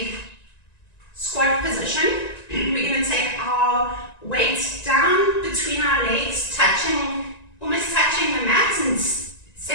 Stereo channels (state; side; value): late; right; 1.9 ms